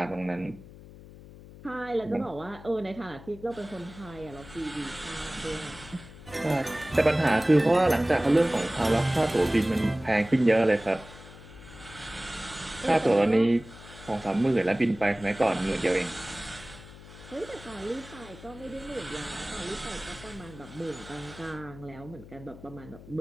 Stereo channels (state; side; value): noise; left; hum, 18 dB below the sound